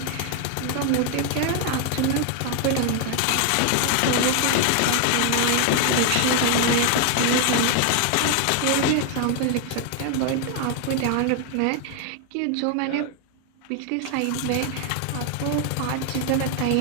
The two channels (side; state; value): both; different; correlation 0.00